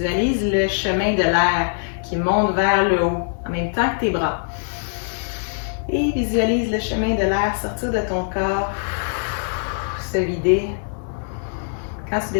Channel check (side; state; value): right; silent; 64 dB below the other